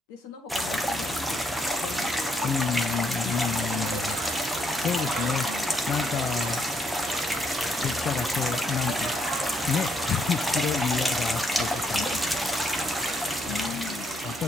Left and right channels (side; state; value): both; normal; correlation 0.74